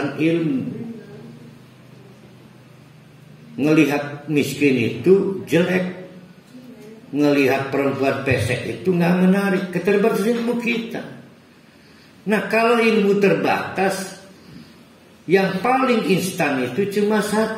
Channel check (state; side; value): identical; both; correlation 1.00